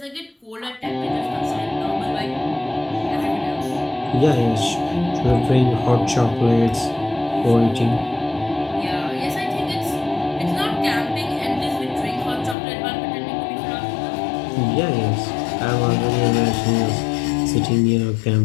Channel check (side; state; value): right; drops out; at 12.6 s